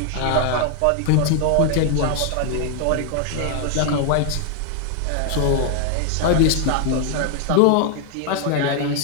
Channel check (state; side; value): different; both; correlation 0.00